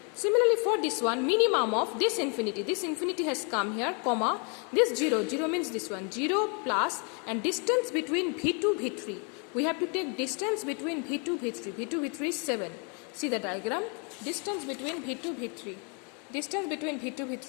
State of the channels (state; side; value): quieter; right; 36.4 dB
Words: Similarly for this one, minimum of this infinity has come here, comma, this 0 means this one, 0 plus and distance between V2, V3. We have to take distance between V2, V3. V2, V3 is 7. See the diagram, distance between V2, V3. Distance between V2,